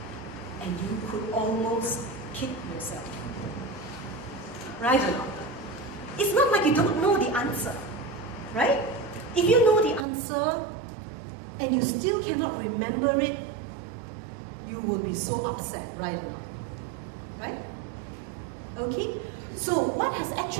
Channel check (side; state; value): left; drops out; at 10.1 s